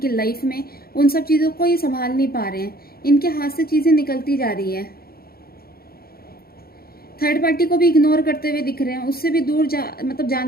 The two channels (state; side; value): late; right; 0.44 ms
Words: लाइफ में, उन सब चीज़ों को ये संभाल नहीं पा रहे हैं। इनके हाथ से चीज़ें निकलती जा रही है। थर्ड पार्टी को भी इग्नोर करते हुए दिख रहे हैं, उससे भी दूर मतलब